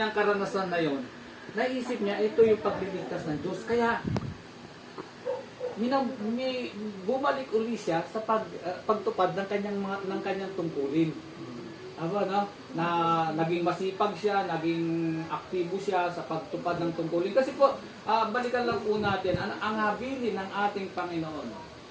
karanasan na yon, naisip niya ito yung pagliligtas ng Diyos. Kaya bumalik uli siya sa pagtupad ng kanyang tungkulin. Na naging masipag siya, naging aktibo siya sa pagtupad ng tungkulin. Kasi po, balikan lang po natin ang habilin ng ating Panginoon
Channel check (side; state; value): both; identical; correlation 1.00